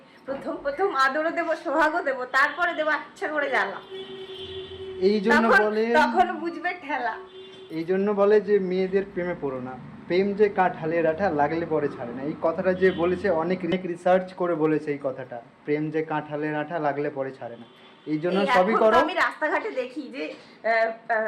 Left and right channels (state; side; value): identical; both; correlation 1.00